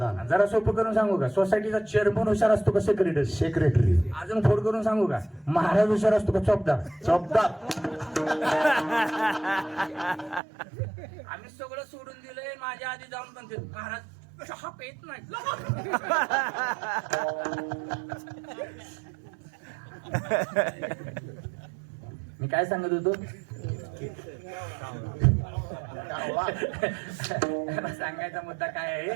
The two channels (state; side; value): drops out; left; at 10.4 s